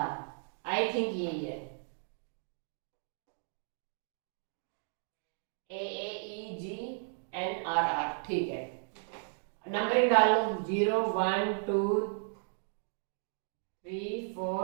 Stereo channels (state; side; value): silent; left; digital silence